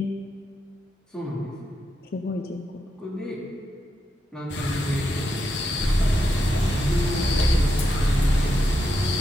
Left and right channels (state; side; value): normal; both; correlation 0.84